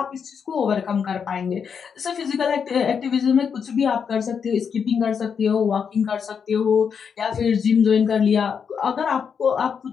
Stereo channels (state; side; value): quieter; right; 6.7 dB